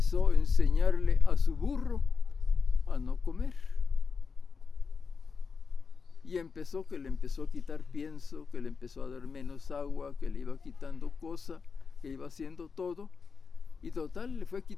enseñarle a su burro a no comer. Y que le empezó a quitar pienso, que le empezó a dar menos agua, que le iba quitando cosa, que iba haciendo todo. Y total, le fue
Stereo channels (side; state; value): right; quieter; 5.2 dB